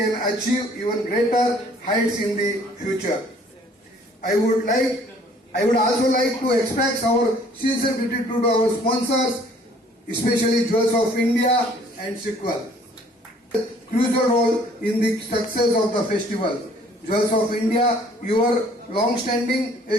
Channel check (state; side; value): normal; both; correlation 0.57